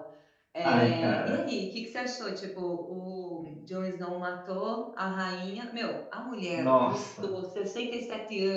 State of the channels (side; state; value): both; identical; correlation 1.00